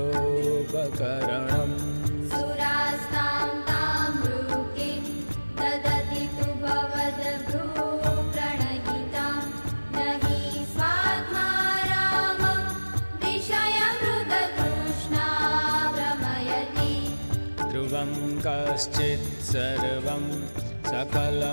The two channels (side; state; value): both; inverted; correlation -1.00